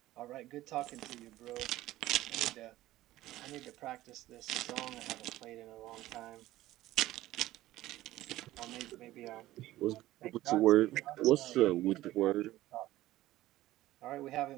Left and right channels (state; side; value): quieter; left; 15.8 dB